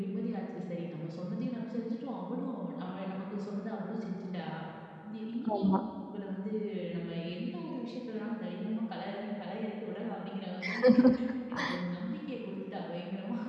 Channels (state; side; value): identical; both; correlation 1.00